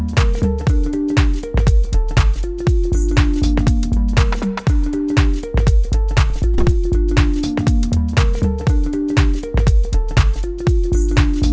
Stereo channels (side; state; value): both; identical; correlation 1.00